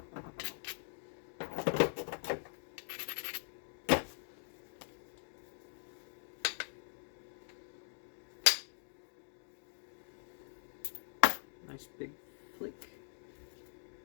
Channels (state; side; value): silent; right; digital silence